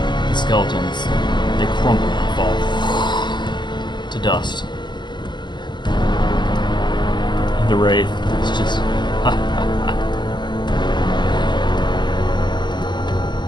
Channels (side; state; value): right; late; 0.21 ms